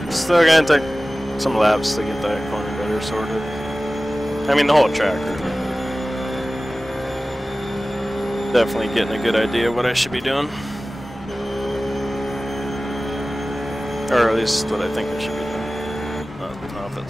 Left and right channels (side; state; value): both; normal; correlation 0.97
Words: Still gonna take some laps to get that corner better sorted. I mean, the whole track really. Definitely getting a good idea of what I should be doing. Or at least what I think I should be doing. I don't know if